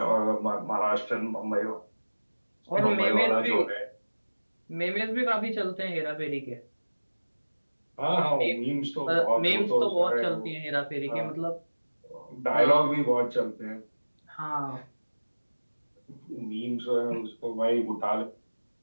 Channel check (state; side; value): inverted; both; correlation -1.00